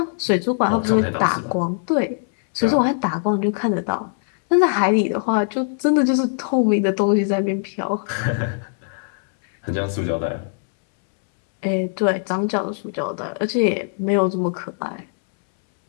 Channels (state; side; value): silent; right; 65 dB below the other